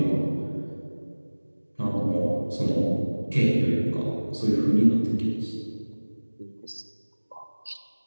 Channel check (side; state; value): both; inverted; correlation -1.00